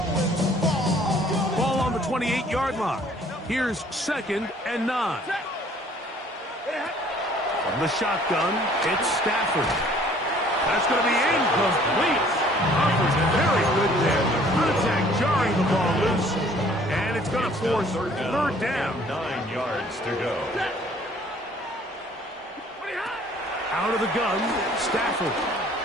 Ball on the 28-yard line. Here's 2nd and 9. From the shotgun, it's Stafford. That's going to be incomplete. Offers very good there. Contact jarring the ball loose. And it's going to force third down. 9 yards to go. Out of the gun, Stafford.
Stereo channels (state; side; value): normal; both; correlation 0.56